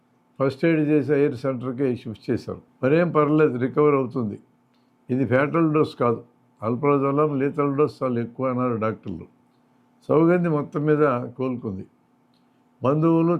ఫస్ట్ ఎయిడ్ చేసి ఎయిర్ సెంటర్కి షిఫ్ట్ చేశారు. మరేం పర్లేదు, రికవర్ అవుతుంది, ఇది ఫ్యాటల్ డోస్ కాదు, ఆల్ప్రాజోలాం లీతల్ డోస్ చాలా ఎక్కువ అన్నారు డాక్టర్లు. సౌగంధి మొత్తం మీద కోలుకుంది. బంధువులు,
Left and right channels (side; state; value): both; identical; correlation 1.00